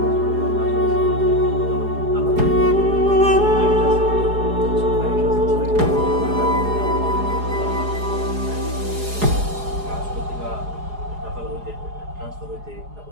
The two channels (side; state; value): left; late; 4.8 ms